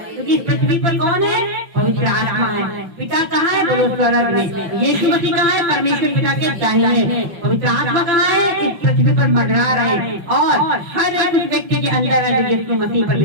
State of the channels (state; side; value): late; left; 5.9 ms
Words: क्योंकि इस पृथ्वी पर कौन है? पवित्र आत्मा है। पिता कहाँ है? बोलो स्वर्ग में। यीशु मसीह कहाँ है? परमेश्वर पिता के दाहिने। पवित्र आत्मा कहाँ है? इस पृथ्वी पर मंडरा रहे हैं। और हर एक उस व्यक्ति के अंदर है जो यीशु मसीह पर